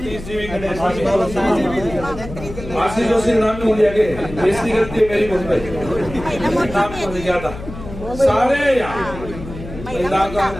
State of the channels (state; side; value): noise; left; hum, 12 dB below the sound